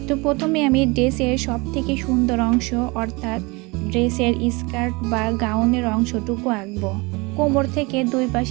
তো প্রথমে আমি ড্রেসের সব থেকে সুন্দর অংশ অর্থাৎ ড্রেসের স্কার্ট বা গাউনের অংশটুকু আঁকবো। কোমর থেকে দুই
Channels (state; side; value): quieter; left; 26.2 dB